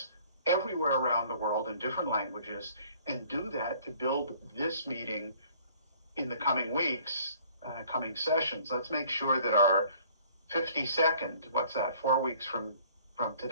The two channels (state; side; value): inverted; both; correlation -0.56